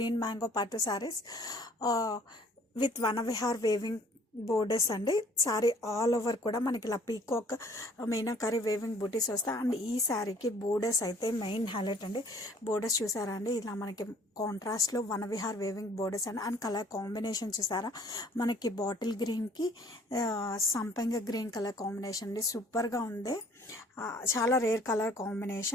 mango పట్టు saris with Vanavihar weaving borders అండి. శారీ ఆల్ ఓవర్ కూడా మనకి ఇలా పీకాక్ మీనాకరీ వేవింగ్ బూటీస్ వస్తాయి. అండ్ ఈ శారీకి బోర్డర్స్ అయితే మెయిన్ హైలైట్ అండి. బోర్డర్స్ చూసారా అండి, ఇలా మనకి కాంట్రాస్ట్లో వనవిహార్ వేవింగ్ బోర్డర్స్ అండి. అండ్ కలర్ కాంబినేషన్ చూసారా, మనకి బాటిల్ గ్రీన్కి సంపంగ గ్రీన్ కలర్ కాంబినేషన్ అండి. సూపర్గా ఉంది, చాలా rare colour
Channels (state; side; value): normal; both; correlation 0.56